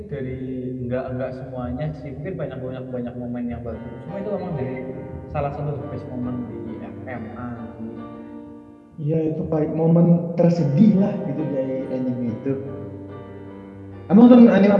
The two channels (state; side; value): identical; both; correlation 1.00